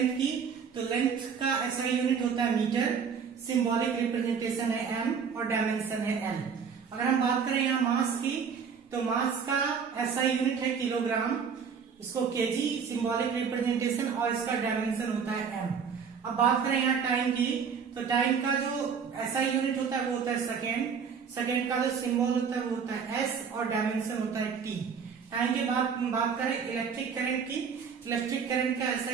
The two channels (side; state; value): left; quieter; 6.4 dB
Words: की तो लेंथ का एसआई यूनिट होता है मीटर, सिंबॉलिक रिप्रेजेंटेशन है एम और डायमेंशन है एल. अगर हम बात करें यहाँ मास की तो मास का एसआई यूनिट है किलोग्राम, इसको केजी सिंबॉलिक रिप्रेजेंटेशन और इसका डायमेंशन होता है एम. अब बात करें यहाँ टाइम की तो टाइम का जो एसआई यूनिट होता है वो होता है सेकेंड, सेकेंड का जो सिंबल होता है वो होता है एस और डायमेंशन होता है टी. टाइम के बाद बात करें इलेक्ट्रिक करंट की, इलेक्ट्रिक करंट का